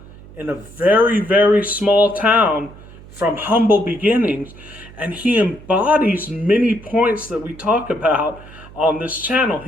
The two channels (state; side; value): noise; right; hum, 19 dB below the sound